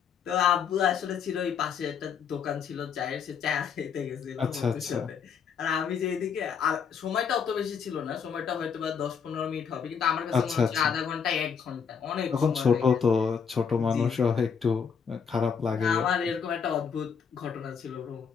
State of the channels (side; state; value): right; quieter; 6.6 dB